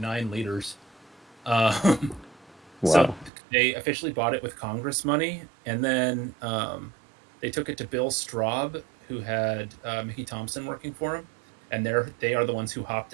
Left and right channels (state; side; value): drops out; left; at 3.3 s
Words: liters. Um, so Wow. they officially bought it with Congress money, and then they took it to Bill Straub, who had Mickey Thompson working for him, and they are the ones who hopped